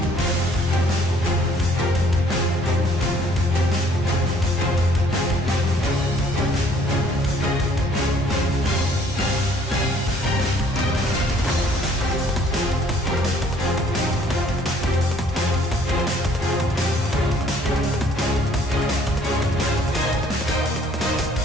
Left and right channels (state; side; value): normal; both; correlation 0.60